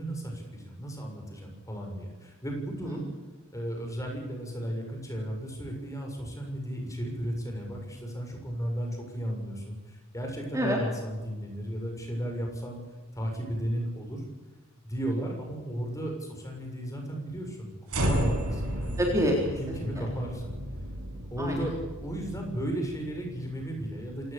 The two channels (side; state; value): both; normal; correlation 0.71